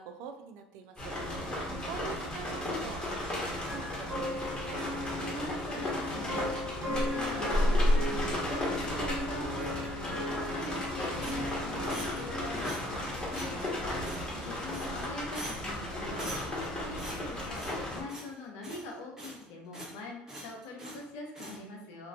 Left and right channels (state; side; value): normal; both; correlation 0.60